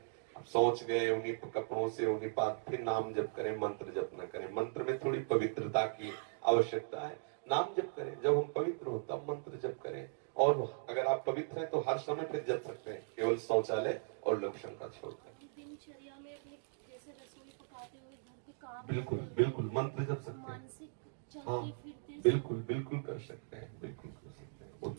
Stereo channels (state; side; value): silent; left; digital silence